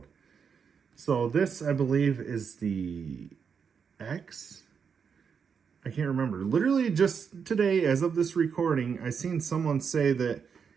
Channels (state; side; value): quieter; left; 6.5 dB